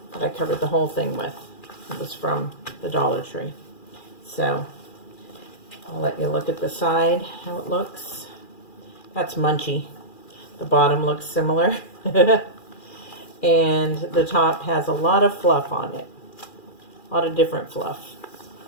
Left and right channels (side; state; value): right; late; 2.4 ms